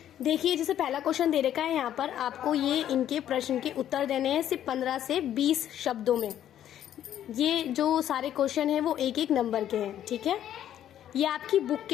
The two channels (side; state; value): right; quieter; 11.0 dB